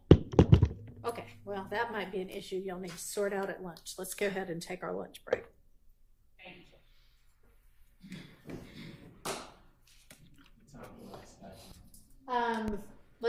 Okay, well, that might be an issue you'll need to sort out at lunch. Let's go ahead and take our lunch break.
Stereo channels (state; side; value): identical; both; correlation 1.00